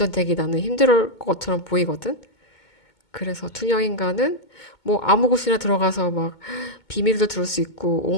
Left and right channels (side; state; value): right; late; 2.2 ms